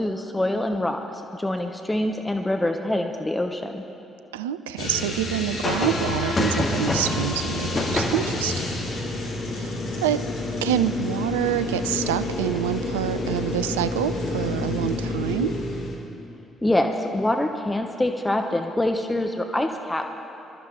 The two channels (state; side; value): normal; both; correlation 0.54